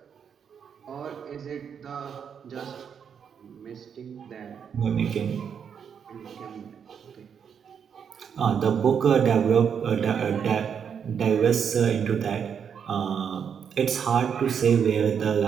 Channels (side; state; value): left; quieter; 7.4 dB